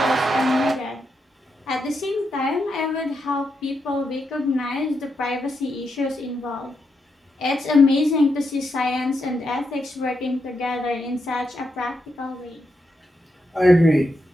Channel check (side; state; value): both; normal; correlation 0.83